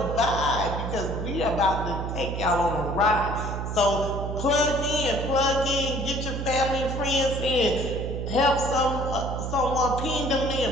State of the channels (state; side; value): noise; right; hum, 4 dB below the sound